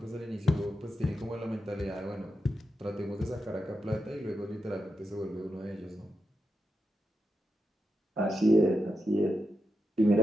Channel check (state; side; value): normal; both; correlation 0.88